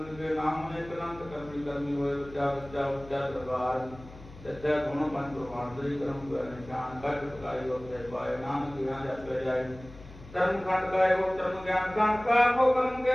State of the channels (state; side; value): noise; left; hum, 18 dB below the sound